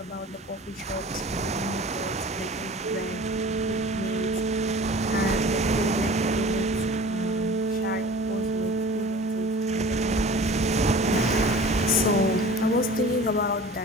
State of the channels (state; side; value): normal; both; correlation 0.42